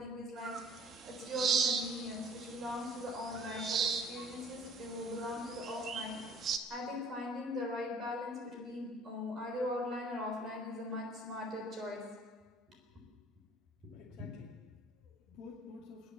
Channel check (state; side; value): normal; both; correlation 0.52